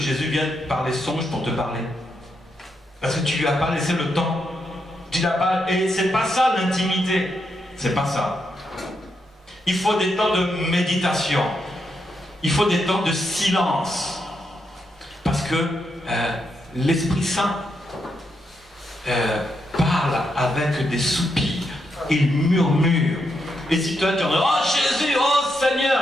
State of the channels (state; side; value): normal; both; correlation 0.82